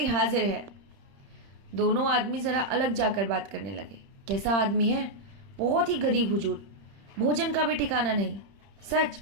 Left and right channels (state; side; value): late; left; 31 ms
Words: हाजिर है। दोनों आदमी जरा अलग जाकर बात करने लगे। कैसा आदमी है? बहुत ही गरीब हुजूर, भोजन का भी ठिकाना नहीं। सच?